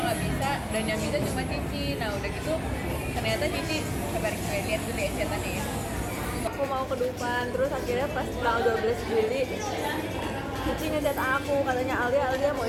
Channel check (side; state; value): both; identical; correlation 1.00